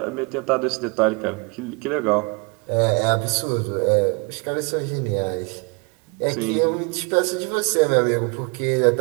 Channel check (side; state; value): left; quieter; 31.0 dB